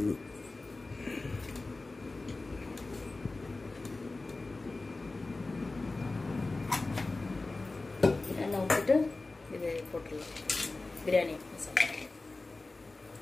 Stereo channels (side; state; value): right; quieter; 3.3 dB